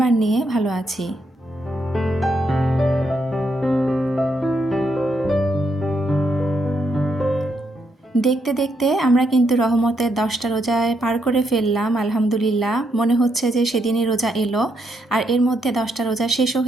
নিয়ে ভালো আছি। দেখতে দেখতে আমরা কিন্তু রহমতের 10টা রোজায় পার করে ফেললাম। আলহামদুলিল্লাহ মনে হচ্ছে যে সেদিনই রোজা এলো আর এর মধ্যে 10টা রোজা শেষও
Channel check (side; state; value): both; normal; correlation 0.78